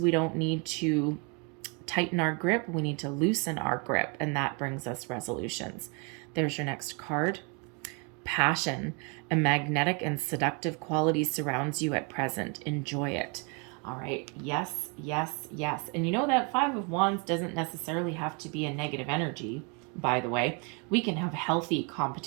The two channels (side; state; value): left; quieter; 32.4 dB